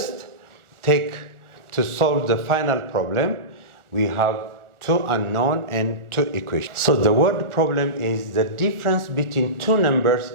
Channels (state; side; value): late; left; 1.4 ms